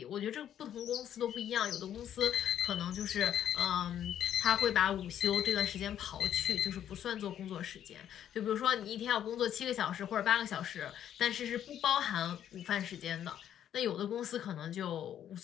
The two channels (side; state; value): right; quieter; 10.3 dB